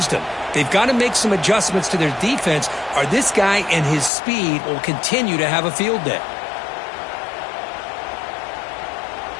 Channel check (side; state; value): right; drops out; at 4.1 s